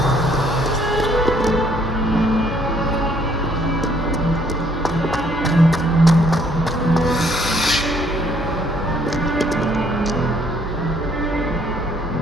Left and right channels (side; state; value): both; normal; correlation 0.65